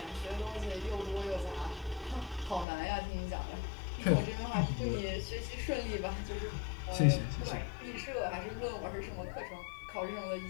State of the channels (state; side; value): drops out; right; at 2.7 s